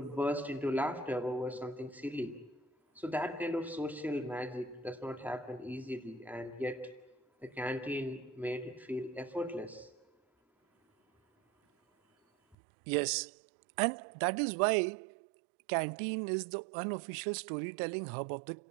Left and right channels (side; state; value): left; drops out; at 12.6 s